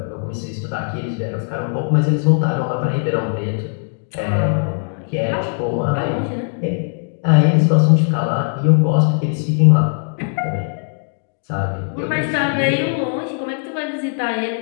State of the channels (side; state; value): right; silent; digital silence